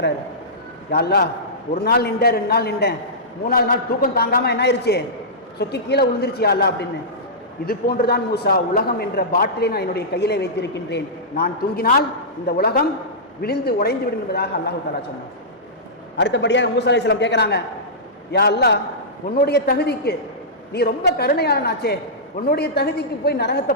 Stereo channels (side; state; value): both; normal; correlation -0.16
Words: யா அல்லாஹ், ஒரு நாள் நின்றேன், 2 நாள் நின்றேன், 3ஆவது நாள் தூக்கம் தாங்காமல் என்ன ஆயிடுச்சு, சொக்கி கீழே விழுந்துருச்சு யா அல்லாஹ் அப்படின்னு. இது போன்றுதான் மூசா, உலகம் என்ற பாட்டிலை நான் என்னுடைய கையிலே வைத்திருக்கின்றேன், நான் தூங்கினால் இந்த உலகம் விழுந்து உடைந்து விடும் என்பதாக அல்லாஹு தஆலா சொன்னார். அடுத்தபடியாக மூசா அலைஹிஸ்ஸலாம் கேட்குறாங்க, யா அல்லாஹ், உன்னுடைய தகுதிக்கு நீ ரொம்ப கருணையாளனாச்சே, உன்னுடைய தகுதிக்கு போய் நரகத்தை